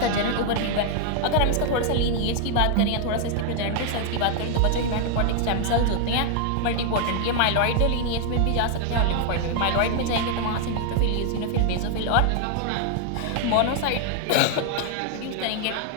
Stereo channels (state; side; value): different; both; correlation 0.00